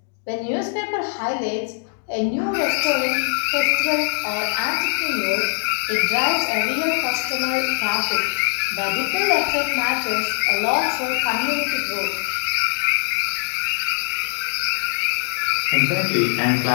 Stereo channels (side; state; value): right; silent; digital silence